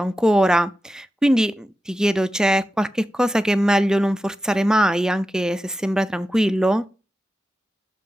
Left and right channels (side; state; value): both; normal; correlation 0.92